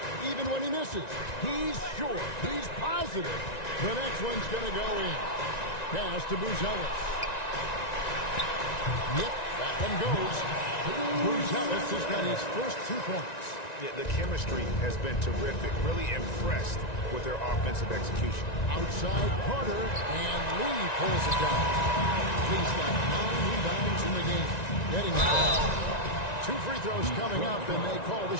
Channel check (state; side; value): late; right; 1.9 ms